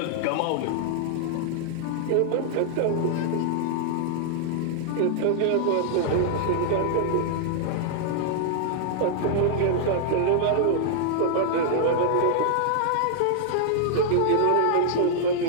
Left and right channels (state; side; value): different; both; correlation -0.01